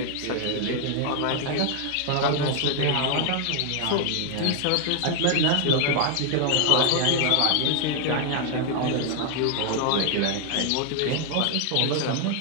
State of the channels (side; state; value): both; different; correlation 0.00